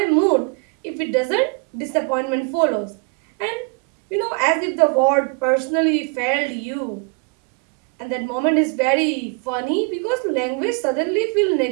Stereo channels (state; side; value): quieter; left; 36.7 dB